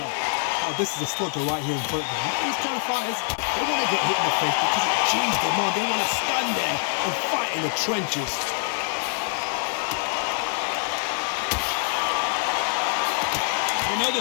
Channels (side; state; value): right; silent; 58 dB below the other